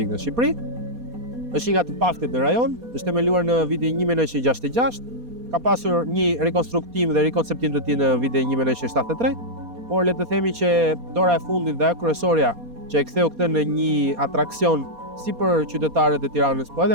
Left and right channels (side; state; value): left; late; 4.2 ms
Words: në Shqipëri. Është një nga të paktet në rajon, është themeluar në vitin 1966. Ka pasur një rekonstruktim dhe rikonceptim të tij në vitin 1973, por le të themi që dora e fundit dhe kryesorja që e ktheu këtë në një atraksion si për qytetarët e Tiranës, po